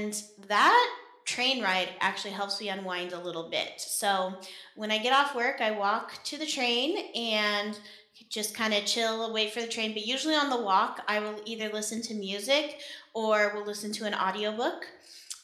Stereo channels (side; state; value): both; identical; correlation 1.00